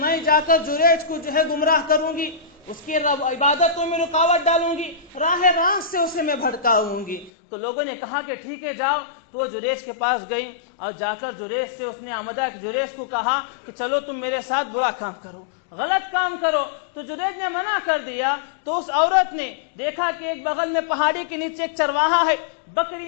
جا کر جریج کو جو ہے گمراہ کروں گی، اس کی عبادتوں میں رکاوٹ ڈالوں گی، راہ راست سے اسے میں بھٹکاؤں گی. تو لوگوں نے کہا کہ ٹھیک ہے جاؤ. تو وہ جریج کے پاس گئی اور جا کر جریج سے اس نے آمدہ جریج کو کہا کہ چلو تم میرے ساتھ برا کام کرو، غلط کام کرو. تو جریج نے منع کر دیا. تو اس عورت نے دیکھا کہ ایک بغل میں پہاڑی کے نیچے ایک چرواہا ہے،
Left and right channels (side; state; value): right; drops out; at 7.3 s